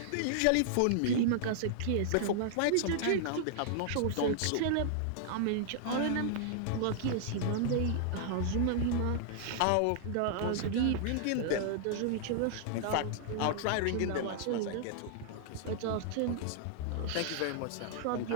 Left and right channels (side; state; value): both; different; correlation -0.01